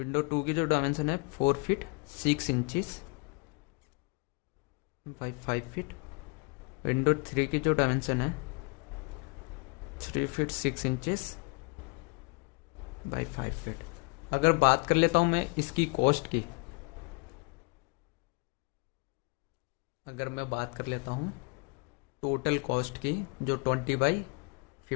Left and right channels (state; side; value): quieter; right; 32.5 dB